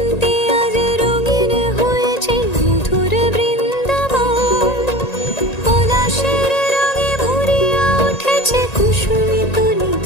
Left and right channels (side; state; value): right; late; 1.9 ms